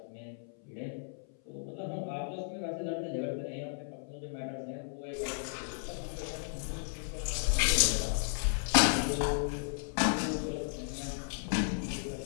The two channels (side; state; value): right; silent; 55 dB below the other